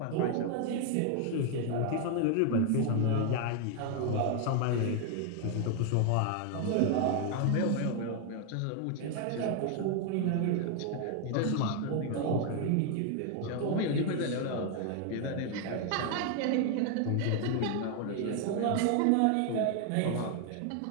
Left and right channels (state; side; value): different; both; correlation 0.00